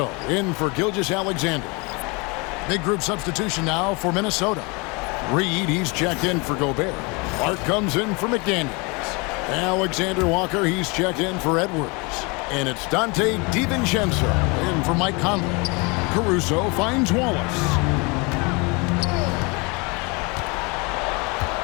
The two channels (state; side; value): quieter; right; 28.9 dB